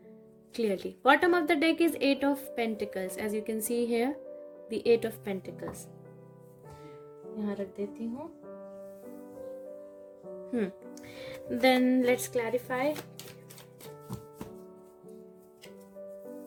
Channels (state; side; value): identical; both; correlation 1.00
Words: clearly. Bottom of the deck is 8 of pentacles, as you can see here the 8 of pentacles. यहाँ रख देती हूँ। Then let's clarify.